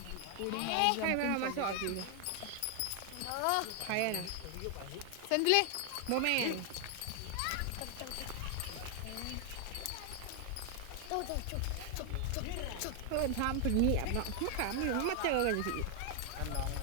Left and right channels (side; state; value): both; different; correlation 0.00